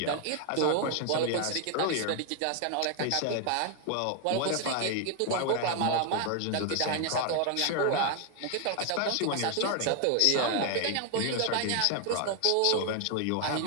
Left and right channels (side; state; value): both; different; correlation 0.00